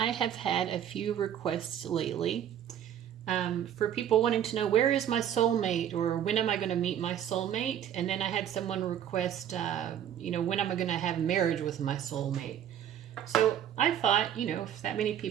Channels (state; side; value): quieter; left; 10.0 dB